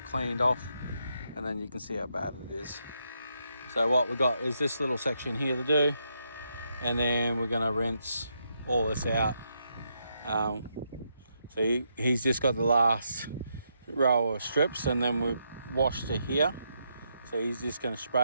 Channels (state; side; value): inverted; both; correlation -0.79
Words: cleaned off, and then you can see how bad it is. So what we've got is this little section here to do, and then we're going to rinse all this out. So he's just got the last row of strips, and then we've washed to here. So he's just going to